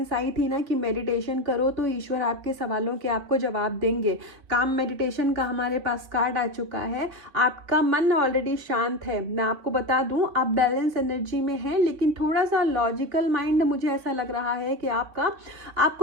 आई थी ना कि मेडिटेशन करो तो ईश्वर आपके सवालों के आपको जवाब देंगे। काम मेडिटेशन का हमारे पास कार्ड आ चुका है। आपका मन ऑलरेडी शांत है। मैं आपको बता दूं, आप बैलेंस एनर्जी में हैं, लेकिन थोड़ा सा लॉजिकल माइंड मुझे ऐसा लग रहा है कि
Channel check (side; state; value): left; late; 3.3 ms